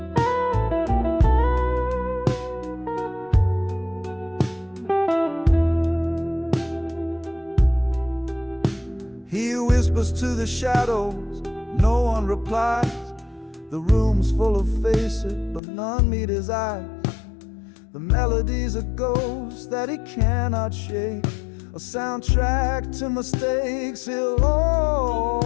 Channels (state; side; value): drops out; right; at 15.6 s